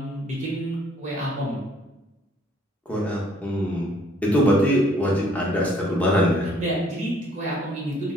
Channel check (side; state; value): both; normal; correlation 0.61